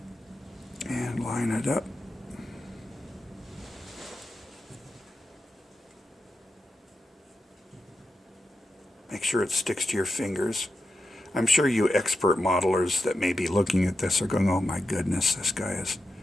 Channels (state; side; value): normal; both; correlation 0.88